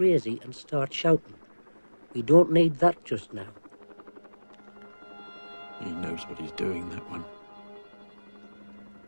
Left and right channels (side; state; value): both; inverted; correlation -1.00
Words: and start shouting. We don't need that just now. He knows what he's doing, that one.